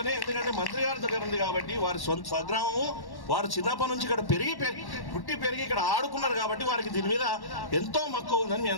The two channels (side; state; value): right; late; 1.1 ms